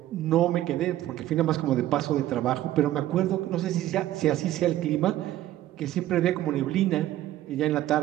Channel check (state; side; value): quieter; left; 14.0 dB